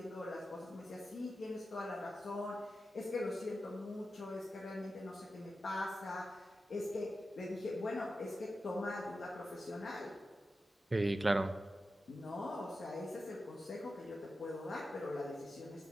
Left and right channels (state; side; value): normal; both; correlation 0.91